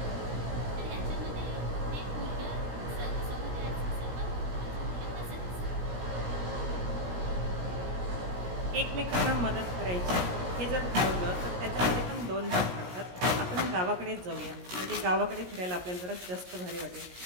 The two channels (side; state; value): left; late; 17 ms